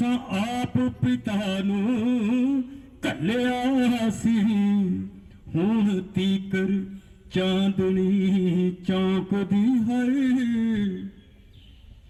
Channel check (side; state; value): both; identical; correlation 1.00